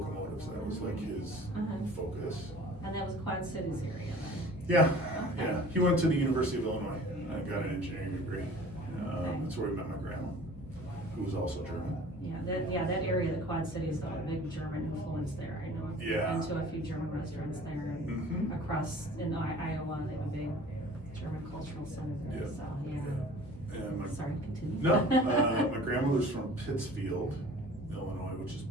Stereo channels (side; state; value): both; normal; correlation 0.46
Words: That was like his focus. And that was Quad Cities area then? Yeah, Okay. yeah. He went to the University of Illinois and got an engineering degree. That's where he met my grandma, who was also German. That area, the Quad Cities, a big German influence there. I know. Yeah. I've been to a few German restaurants there and Mhm. across in Iowa, they have a big German cultural center there, Yeah. so, yeah. And Sorry, continue. No, my grandmother's from Pittsfield, Illinois, which is